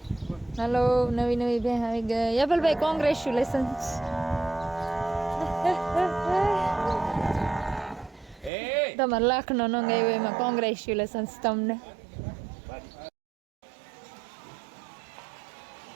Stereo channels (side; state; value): left; drops out; at 8.5 s